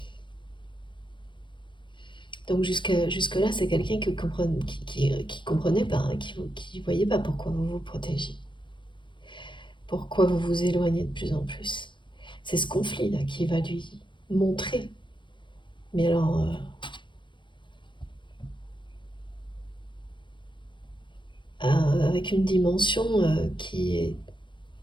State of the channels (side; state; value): right; late; 0.23 ms